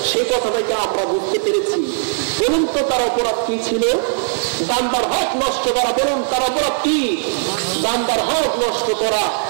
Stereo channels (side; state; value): left; silent; digital silence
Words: সে কথাটাকে আমরা বুঝতে পেরেছি। বলুন তো তার অপরাধ কি ছিল? বান্দার হক নষ্ট করা। বলুন তার অপরাধ কি? বান্দার হক নষ্ট করা।